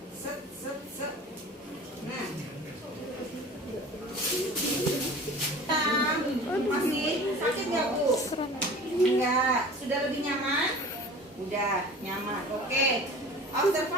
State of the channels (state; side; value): normal; both; correlation 0.41